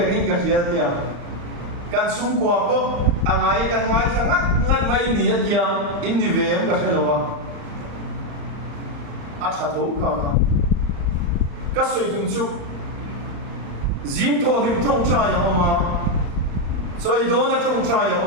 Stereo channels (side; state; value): left; late; 35 ms